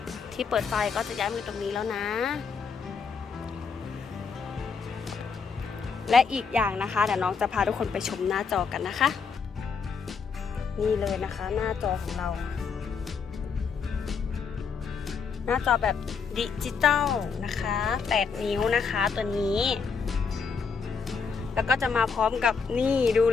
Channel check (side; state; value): right; quieter; 5.6 dB